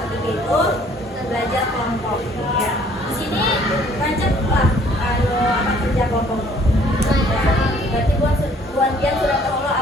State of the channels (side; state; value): both; normal; correlation 0.58